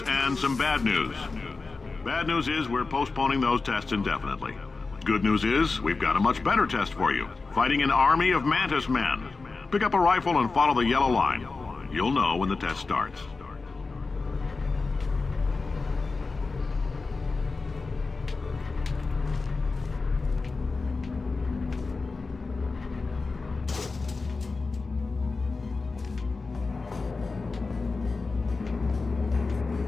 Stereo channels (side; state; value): right; quieter; 4.0 dB